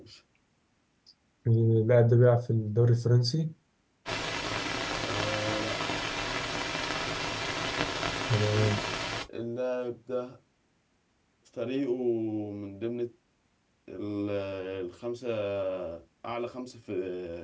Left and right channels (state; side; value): identical; both; correlation 1.00